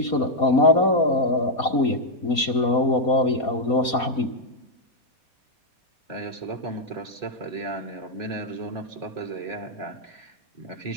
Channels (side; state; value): right; late; 4.2 ms